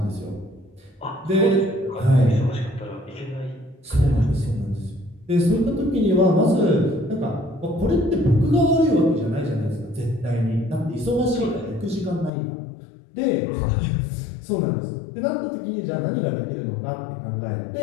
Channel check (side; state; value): right; drops out; at 12.3 s